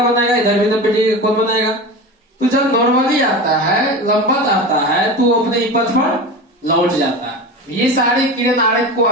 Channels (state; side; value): normal; both; correlation 0.28